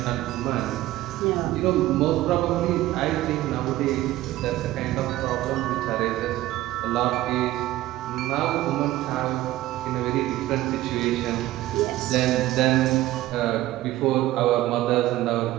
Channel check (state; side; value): quieter; left; 15.8 dB